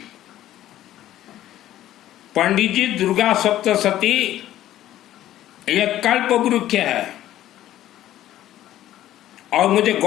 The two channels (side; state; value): right; quieter; 13.2 dB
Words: पंडित जी, दुर्गा सप्तशती यह कल्प वृक्ष है और मुझे